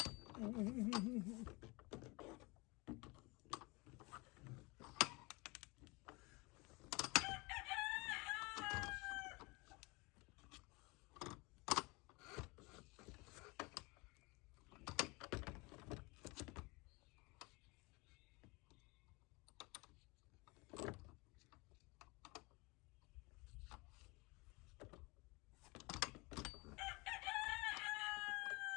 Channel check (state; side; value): quieter; right; 25.8 dB